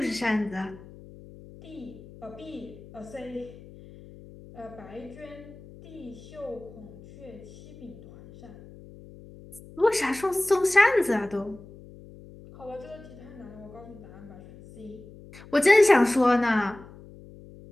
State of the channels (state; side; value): noise; left; hum, 19 dB below the sound